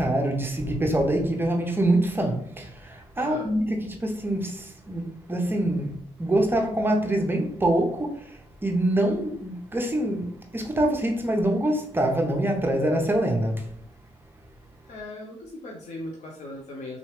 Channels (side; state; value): both; normal; correlation 0.81